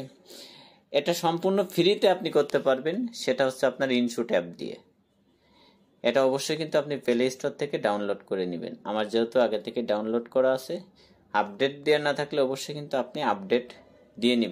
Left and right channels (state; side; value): identical; both; correlation 1.00